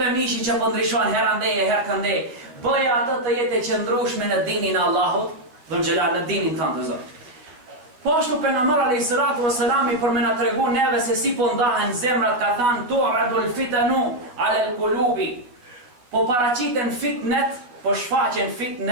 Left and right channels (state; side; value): late; left; 12 ms